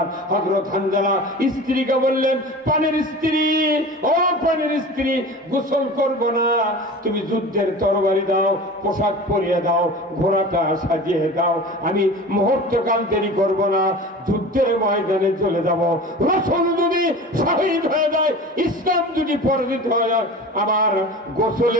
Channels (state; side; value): normal; both; correlation 0.36